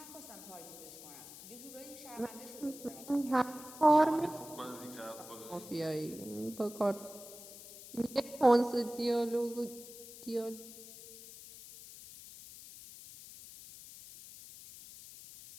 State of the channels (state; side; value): noise; left; hiss, 15 dB below the sound